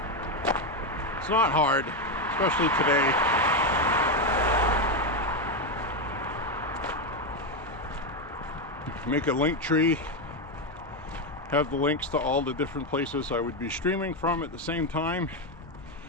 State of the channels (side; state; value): both; normal; correlation 0.07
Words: It's not hard, especially today. Make a link tree, have the links to all the different places I would be streaming from at the same time.